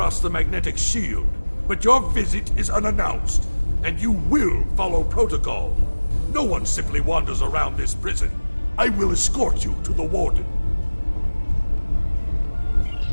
the magnetic shield, but your visit is unannounced. And you will follow protocol. No one simply wanders around this prison. I will escort you to the Warden.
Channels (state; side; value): inverted; both; correlation -1.00